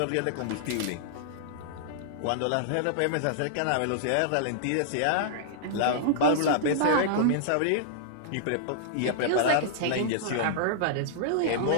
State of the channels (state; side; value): different; both; correlation -0.01